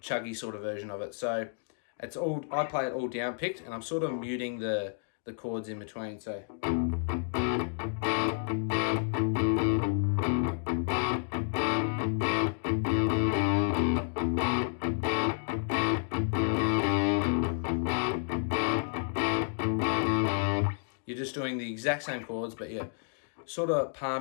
chuggy sort of version of it. So it's all, I play it all down picked, and I'm sort of muting the chords in between. So you're just doing the exact same chords, but you're sort of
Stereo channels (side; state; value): right; silent; digital silence